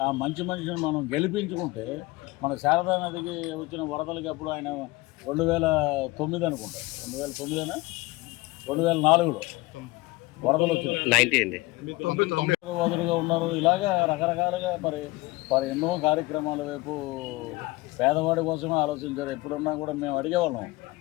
ఆ మంచి మనిషిని మనం గెలిపించుకుంటే మన శారదా నదికి వచ్చిన వరదలకి అప్పుడు ఆయన 2009 అనుకుంటా, 2009 2004లో వరదలు వచ్చింది. వదులుగా ఉన్నారు. ఇలాగా రకరకాలుగా మరి ఎన్నో కార్యక్రమాల వైపు పేదవాడి కోసమే ఆలోచించారు. ఎప్పుడున్నా కూడా మేము అడిగేవాళ్ళం,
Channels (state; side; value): quieter; right; 21.5 dB